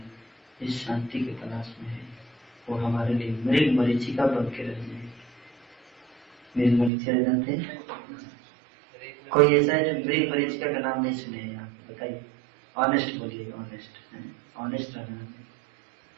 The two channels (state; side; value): drops out; left; at 6.9 s